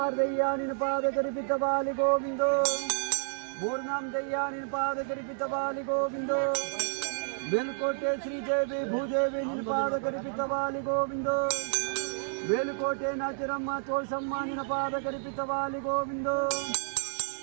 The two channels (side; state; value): left; silent; digital silence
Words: ದಯ್ಯ ನಿನ್ನ ಪಾದ ಕರಿಪಿತ ಬಾಲಿ ಗೋವಿಂದೋ, ಮೂರ್ನಾಮ್ ದಯ್ಯ ನಿನ್ನ ಪಾದ ಕರಿಪಿತ ಬಾಲಿ ಗೋವಿಂದೋ, ಮೇಲುಕೋಟೆ ಶ್ರೀದೇವಿ ಭೂದೇವಿ ನಿನ್ನ ಪಾದ ಕರಿಪಿತ ಬಾಲಿ ಗೋವಿಂದೋ, ಮೇಲುಕೋಟೆ ನಾಚಿರಮ್ಮ ತೋಳ್ಸಮ್ಮ ನಿನ್ನ ಪಾದ ಕರಿಪಿತ ಬಾಲಿ ಗೋವಿಂದೋ,